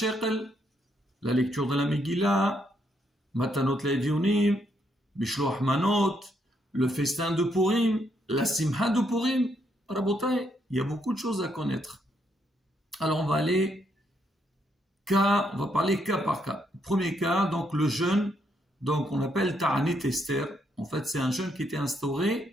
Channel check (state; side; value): normal; both; correlation 0.75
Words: la lecture de la Megillah, Matanot Le'Evionim, Bishloach Manot, le festin de Purim, la Simha de Purim. Rabotai, il y a beaucoup de choses à connaître. Alors on va parler cas par cas. Premier cas, donc le jeûne, donc on appelle Ta'anit Esther. En fait, c'est un jeûne qui était